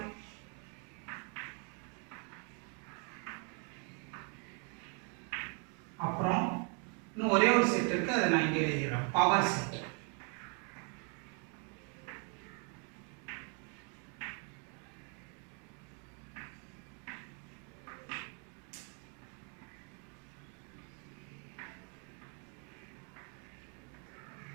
அப்புறம் இன்னும் ஒரே ஒரு செட் இருக்கு அதை நான் இங்கே எழுதிடுறேன் பவர் செட்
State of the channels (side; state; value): left; quieter; 37.5 dB